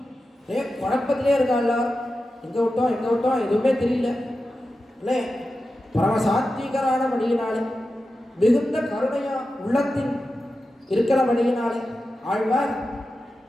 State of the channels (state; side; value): normal; both; correlation 0.92